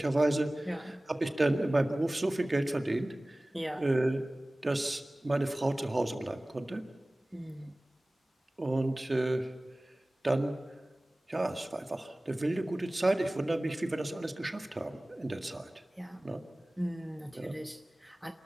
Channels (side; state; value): both; normal; correlation 0.98